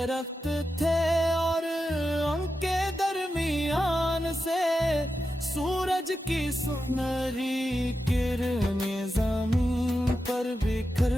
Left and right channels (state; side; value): normal; both; correlation 0.89